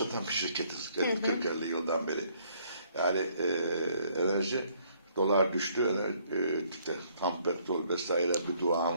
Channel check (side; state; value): both; inverted; correlation -0.66